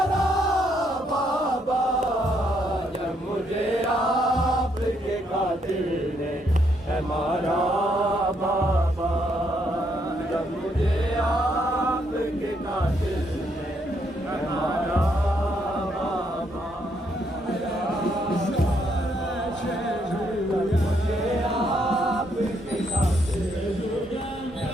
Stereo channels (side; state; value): both; normal; correlation 0.74